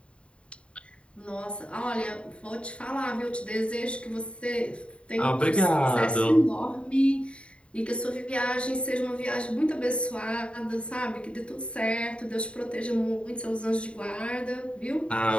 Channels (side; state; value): right; late; 0.059 ms